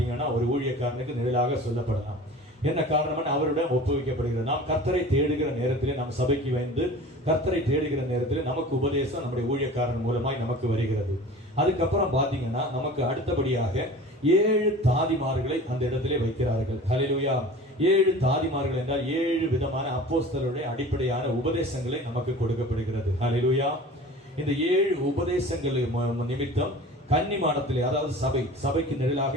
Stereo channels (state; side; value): normal; both; correlation 0.40